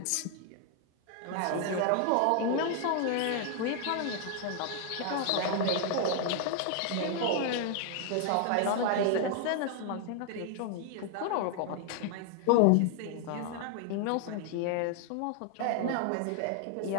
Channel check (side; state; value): both; different; correlation 0.00